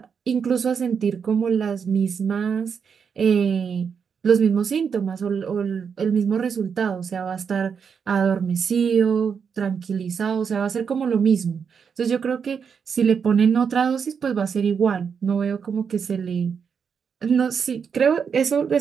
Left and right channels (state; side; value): quieter; left; 6.6 dB